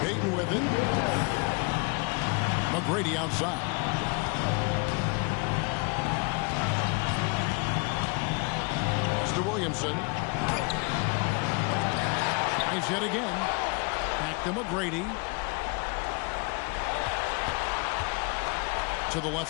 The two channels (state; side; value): quieter; right; 30.8 dB